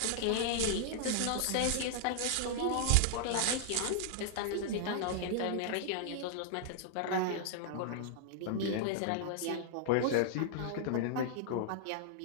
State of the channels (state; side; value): different; both; correlation -0.01